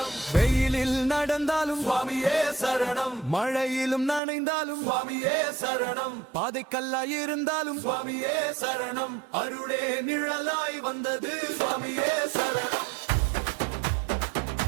வெயிலில் நடந்தாலும் சுவாமியே சரணம், மழையிலும் நனைந்தாலும் சுவாமியே சரணம். பாதைக்கல்லாய் இருந்தாலும் சுவாமியே சரணம், அருளே நிழலாய் வந்தது சுவாமியே சரணம்.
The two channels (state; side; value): drops out; left; at 4.2 s